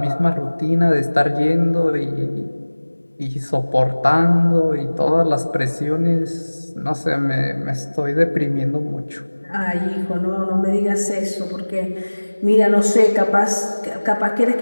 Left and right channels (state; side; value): inverted; both; correlation -1.00